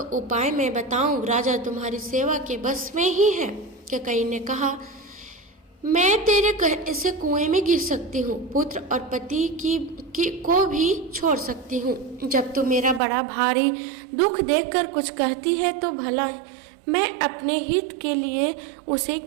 उपाय मैं बताऊं। राजा तुम्हारी सेवा के बस में ही है। ककई ने कहा, मैं तेरे कहने से कुएं में गिर सकती हूँ, पुत्र और पति को भी छोड़ सकती हूँ। जब तू मेरा बड़ा भारी दुख देखकर कुछ कहती है तो भला मैं अपने हित के लिए उसे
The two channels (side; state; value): left; drops out; at 13.0 s